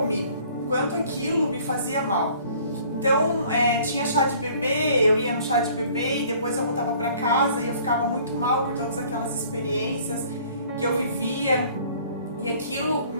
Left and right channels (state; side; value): inverted; both; correlation -0.55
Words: o quanto aquilo me fazia mal. Então, tinha chá de bebê, eu ia no chá de bebê e depois eu voltava para casa e eu ficava muito mal por todas aquelas experiências que eu vivia, e aquilo